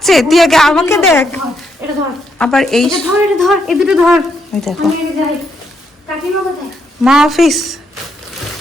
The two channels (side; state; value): both; normal; correlation 0.77